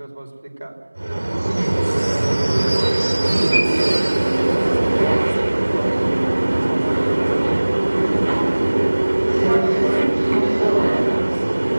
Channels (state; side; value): inverted; both; correlation -1.00